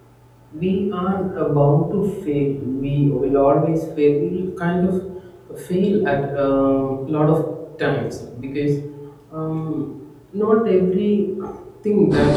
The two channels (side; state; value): both; identical; correlation 1.00